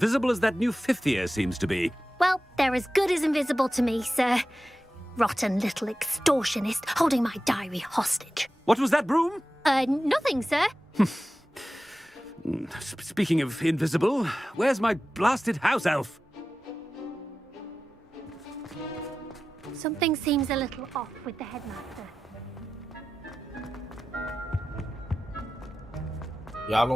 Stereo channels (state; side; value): normal; both; correlation 0.94